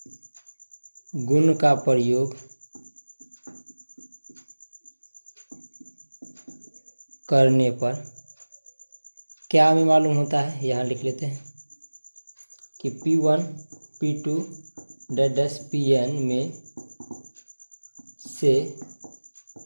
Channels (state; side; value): inverted; both; correlation -1.00